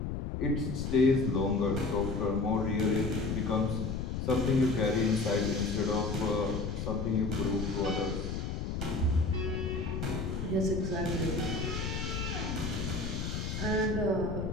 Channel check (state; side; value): noise; left; rumble, 3 dB below the sound